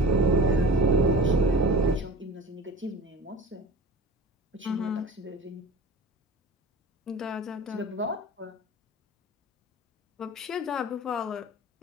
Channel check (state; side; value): normal; both; correlation 0.37